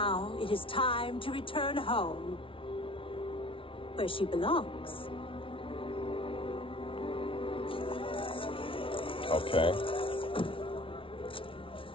it is time to return home, where she belongs. Okay.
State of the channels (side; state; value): right; late; 0.25 ms